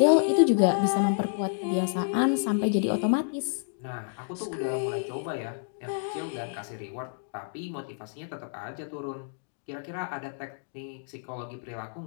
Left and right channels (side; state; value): right; silent; digital silence